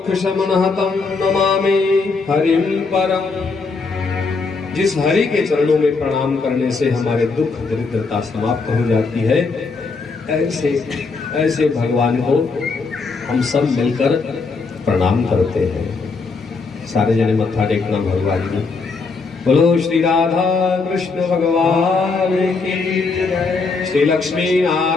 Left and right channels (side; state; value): right; quieter; 4.3 dB